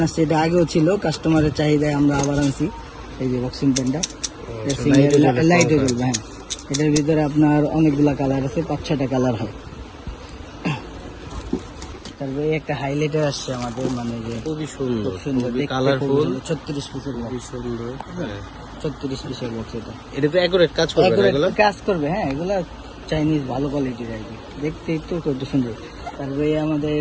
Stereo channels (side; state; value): both; identical; correlation 1.00